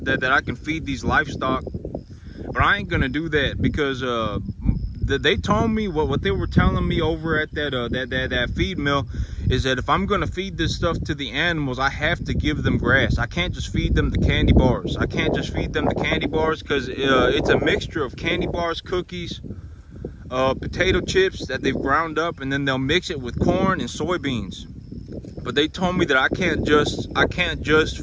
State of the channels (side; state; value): both; identical; correlation 1.00